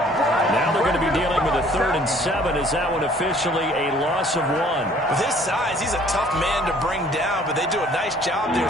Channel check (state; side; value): normal; both; correlation 0.56